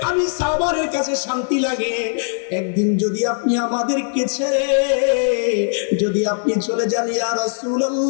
আমি সাওবানের কাছে শান্তি লাগে। একদিন যদি আপনি আমাদেরকে ছেড়ে যদি আপনি চলে যান, ইয়া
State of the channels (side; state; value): right; silent; digital silence